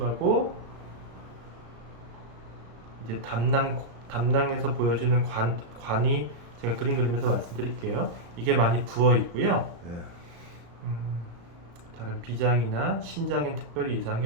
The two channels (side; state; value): left; late; 35 ms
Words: 이제 담낭에서 보여주는 관이 제가 그림 그리면서 말씀드릴게요. 이게 많이 부어 있고요. 다른 비장이나 신장엔 특별히 이상이